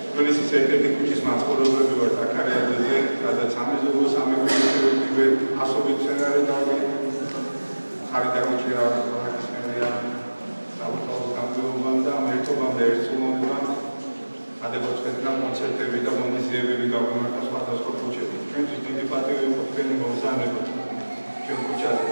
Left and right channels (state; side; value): inverted; both; correlation -1.00